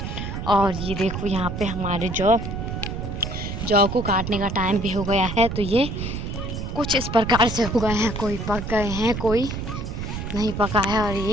और ये देखो यहाँ पे हमारे जौ को काटने का टाइम भी हो गया है। तो ये कुछ इस प्रकार से हो गए हैं, कोई पक गए हैं कोई नहीं पका है। और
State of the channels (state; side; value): noise; right; rumble, 5 dB below the sound